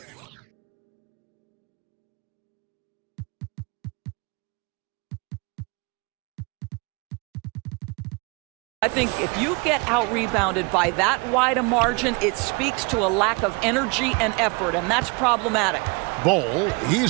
I think if you get out-rebounded by that wide a margin, it speaks to a lack of energy and effort, and that's problematic. Bol,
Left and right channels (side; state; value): left; quieter; 29.6 dB